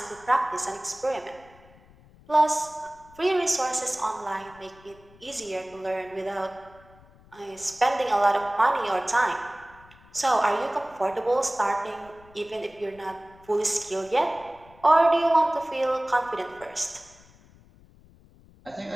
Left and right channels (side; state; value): left; noise; rumble, 25 dB below the sound